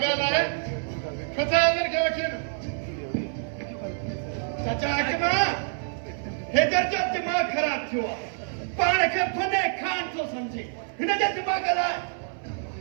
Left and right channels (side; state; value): left; silent; 60 dB below the other